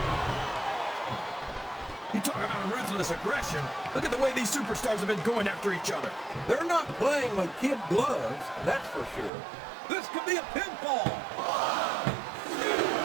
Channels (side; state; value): left; drops out; at 9.3 s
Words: You talk about ruthless aggression. Look at the way these superstars have been going after each other. They're not playing with kid gloves, that's for sure. This could be a pinfall.